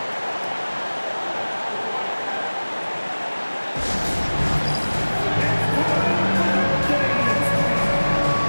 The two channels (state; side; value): inverted; both; correlation -1.00